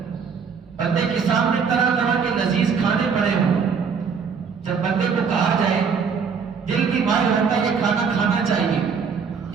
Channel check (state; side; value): quieter; left; 6.0 dB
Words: بندے کے سامنے طرح طرح کے لذیذ کھانے پڑے ہوں، جب بندے کو کہا جائے دل کی مائل ہوتا ہے یہ کھانا کھانا چاہیے،